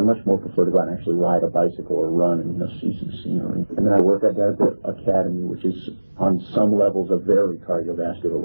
more prefer to go out and actually ride a bicycle or run and see some scenery. And then I work at the academy, which is on some levels a very cardiovascular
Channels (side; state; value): both; inverted; correlation -1.00